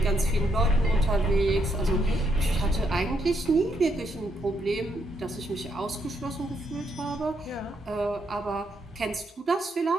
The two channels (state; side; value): normal; both; correlation 0.76